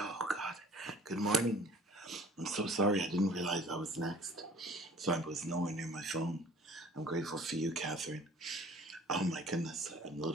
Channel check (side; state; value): both; normal; correlation 0.51